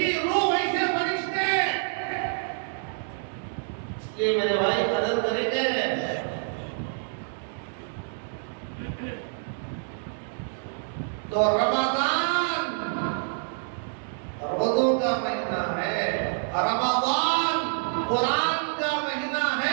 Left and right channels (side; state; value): left; silent; digital silence